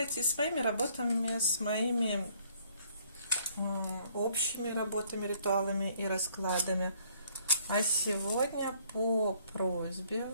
с моими работами, с моими общими работами, ритуалами и раскладами. А сегодня по просьбе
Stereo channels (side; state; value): both; inverted; correlation -0.62